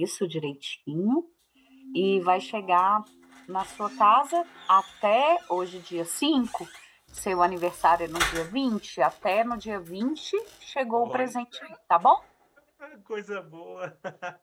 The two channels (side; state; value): both; identical; correlation 1.00